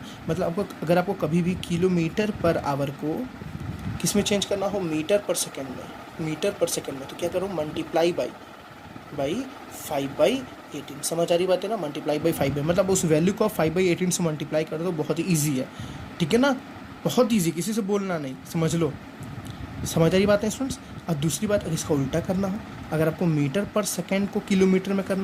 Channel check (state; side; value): identical; both; correlation 1.00